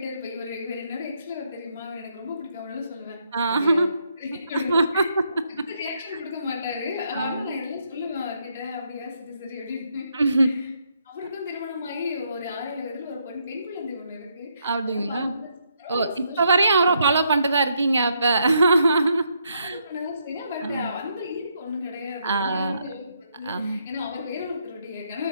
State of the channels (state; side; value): inverted; both; correlation -0.76